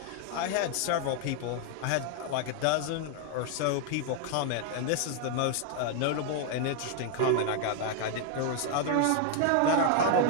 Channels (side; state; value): both; different; correlation 0.00